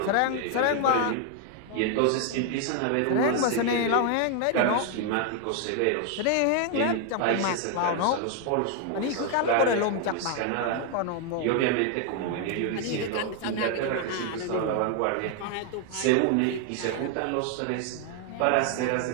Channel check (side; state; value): both; different; correlation 0.00